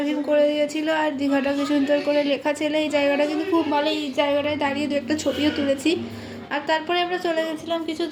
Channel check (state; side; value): identical; both; correlation 1.00